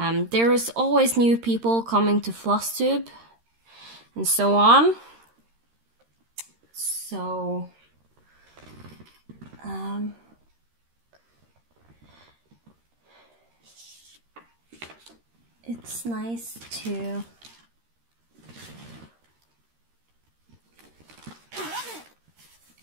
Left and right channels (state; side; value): late; left; 13 ms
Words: There is always new people coming to FlossTube and so on. So it's nice to